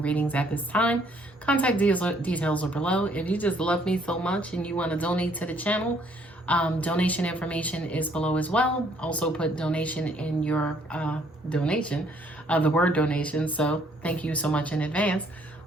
readings at this time. Contact details are below. If you just love me so much and you want to donate to the channel, donation information is below as well. Also put donation in your donation, the word donation. So thank you so much in advance.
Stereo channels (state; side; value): normal; both; correlation 0.65